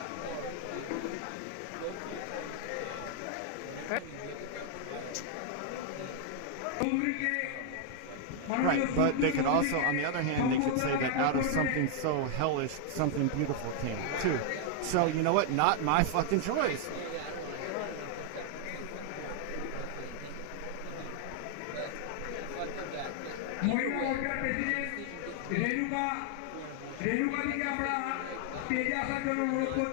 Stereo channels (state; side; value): different; both; correlation 0.00